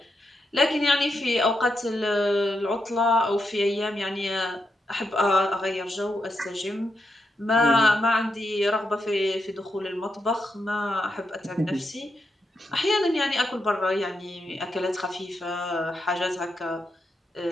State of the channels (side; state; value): both; normal; correlation 0.84